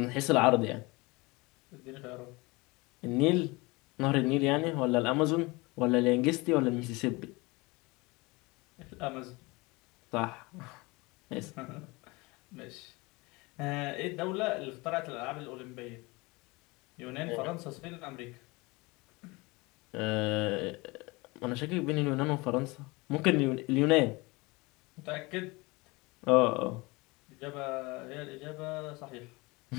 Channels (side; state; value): right; quieter; 24.5 dB